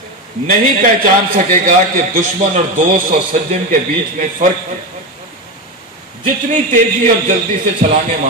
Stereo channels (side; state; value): both; normal; correlation 0.17